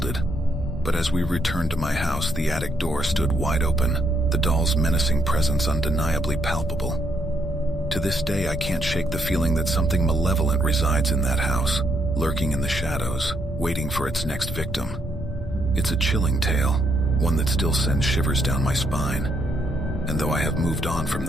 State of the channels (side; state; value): both; normal; correlation 0.75